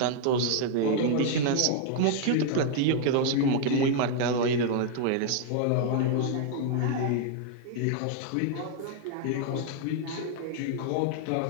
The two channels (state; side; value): different; both; correlation 0.00